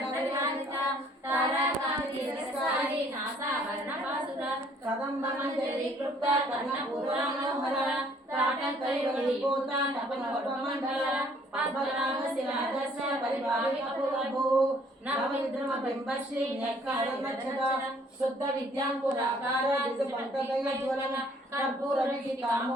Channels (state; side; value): normal; both; correlation 0.61